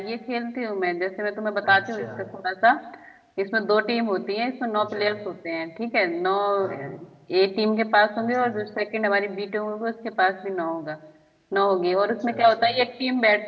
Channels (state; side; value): identical; both; correlation 1.00